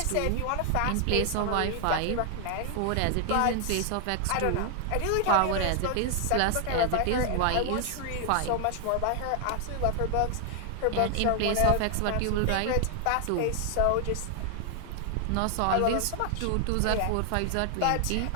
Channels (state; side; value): different; both; correlation 0.00